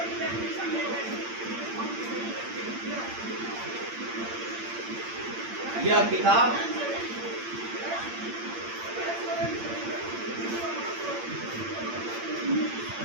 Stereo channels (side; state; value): left; late; 8.7 ms